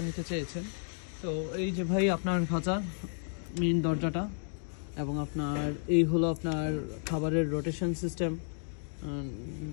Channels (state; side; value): silent; right; 56 dB below the other